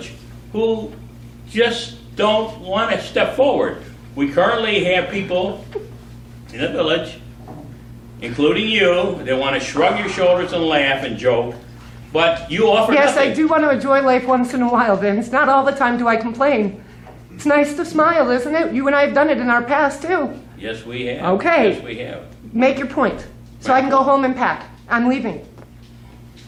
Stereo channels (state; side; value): identical; both; correlation 1.00